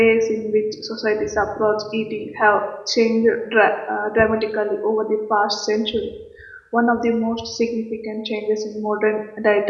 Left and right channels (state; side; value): identical; both; correlation 1.00